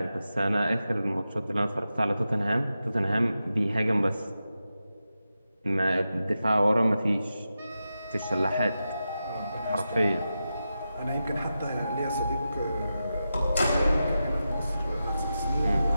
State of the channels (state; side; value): inverted; both; correlation -0.90